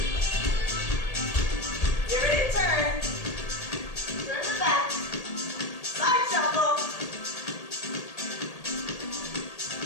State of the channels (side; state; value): right; late; 1.8 ms